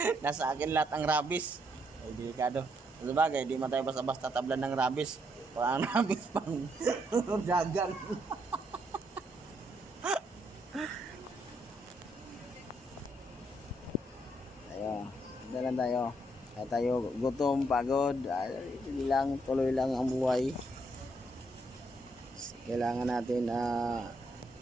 Nasa akin lahat ang rabies. Ay, delikado. Sabagay, di man tayo basta-basta tablan ng rabies. Wala ang rabies pang dagang. Dalan tayo. Kaya tayo gutom, pagod. Tuloy lang ang buhay. Kailangan natin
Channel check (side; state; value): both; normal; correlation 0.74